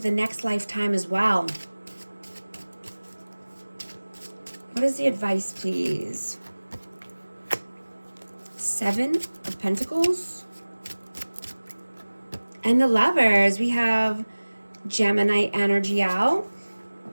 next lifetime as well. What is the advice, please? 7 of Pentacles. And the Lovers, we have Gemini energy out.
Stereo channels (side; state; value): both; inverted; correlation -1.00